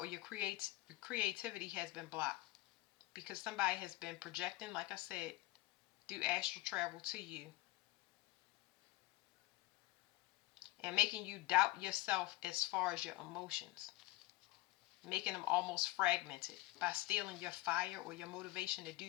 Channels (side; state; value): right; quieter; 19.2 dB